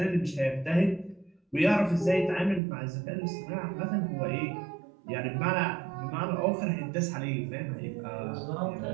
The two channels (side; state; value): left; drops out; at 2.6 s